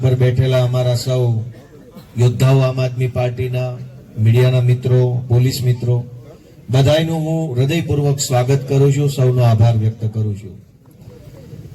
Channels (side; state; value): both; identical; correlation 1.00